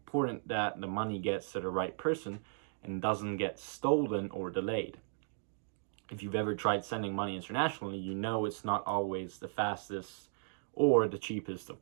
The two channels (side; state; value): left; silent; digital silence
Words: that the money gets to the right person and doesn't get stolen or delayed. If you've ever tried sending money internationally, you know it's not always the fastest or the cheapest of